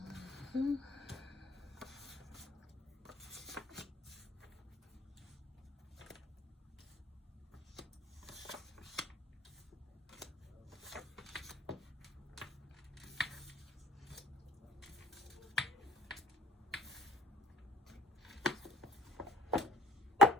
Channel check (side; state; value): both; normal; correlation 0.54